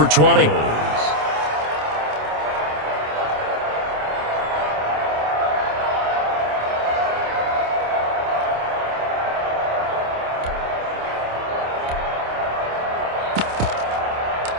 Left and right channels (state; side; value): late; left; 27 ms